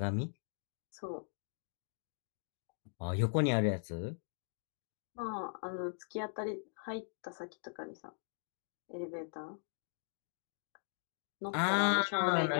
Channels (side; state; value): right; silent; digital silence